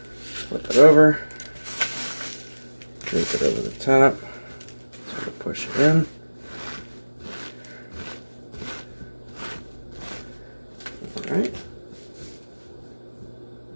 flip it over, drape it over the top, sort of push it in.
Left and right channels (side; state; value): both; inverted; correlation -1.00